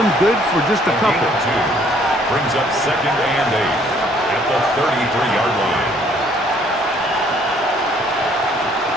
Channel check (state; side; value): normal; both; correlation 0.62